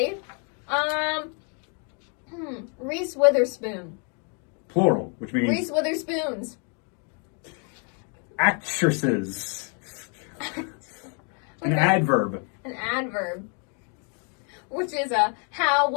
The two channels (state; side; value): quieter; right; 39.6 dB